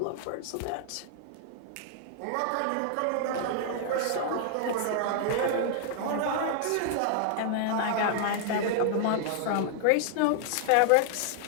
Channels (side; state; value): both; different; correlation -0.01